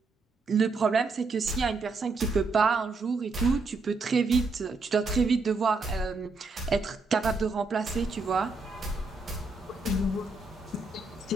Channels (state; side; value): quieter; left; 3.8 dB